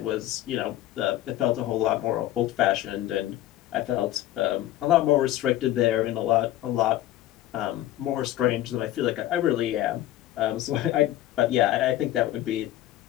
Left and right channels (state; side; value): quieter; right; 14.3 dB